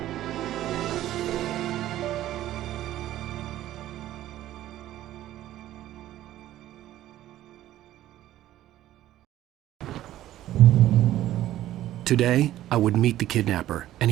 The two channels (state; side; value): quieter; left; 13.6 dB